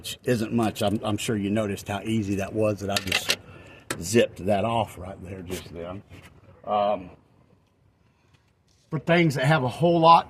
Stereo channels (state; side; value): identical; both; correlation 1.00